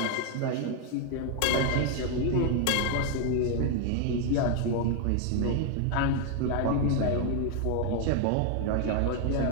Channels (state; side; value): different; both; correlation 0.00